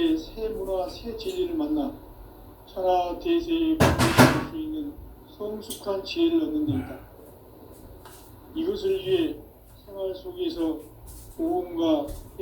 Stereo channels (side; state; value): both; identical; correlation 1.00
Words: 새 문화, 새 진리를 만나 천하 대세에 공존할 수 있는 성숙한 지혜를 얻는 데 있다. 이것을 위해 생활 속에서 보험과